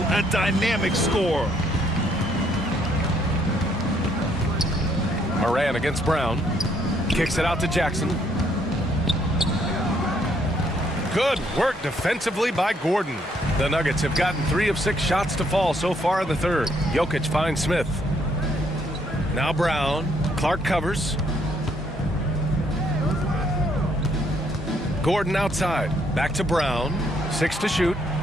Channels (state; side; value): normal; both; correlation 0.69